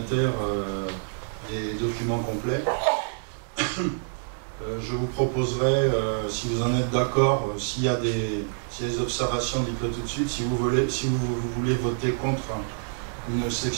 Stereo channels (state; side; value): silent; left; digital silence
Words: des documents complets. Je vous proposerai, si vous en êtes d'accord, s'il y a des observations, dites-le tout de suite. Si vous voulez voter contre une